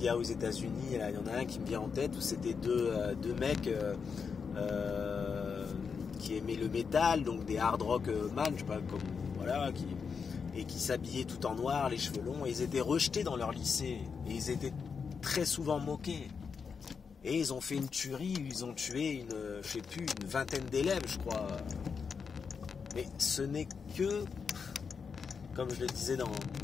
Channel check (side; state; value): right; quieter; 5.8 dB